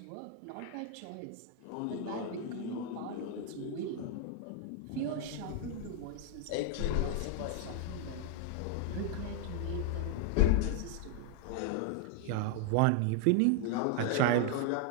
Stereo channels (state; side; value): different; both; correlation 0.00